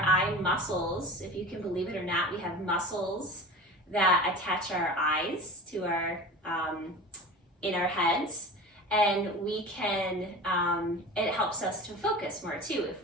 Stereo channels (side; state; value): both; normal; correlation 0.35